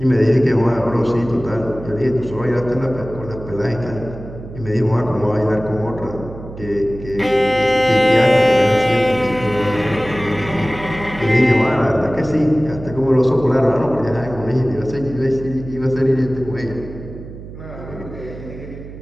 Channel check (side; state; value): right; noise; hum, 14 dB below the sound